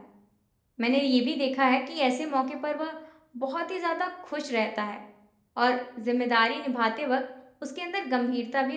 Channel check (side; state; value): both; identical; correlation 1.00